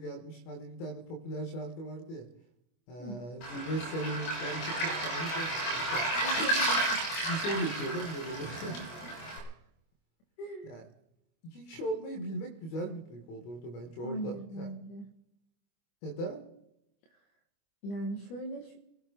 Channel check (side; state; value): right; late; 25 ms